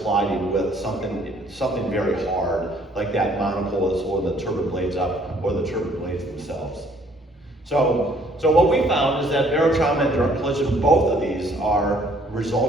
colliding with something very hard, like that monopole that's holding the turbine blades up, or the turbine blades themselves. So what we found is that barotrauma and direct collision, both of these are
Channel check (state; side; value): normal; both; correlation 0.61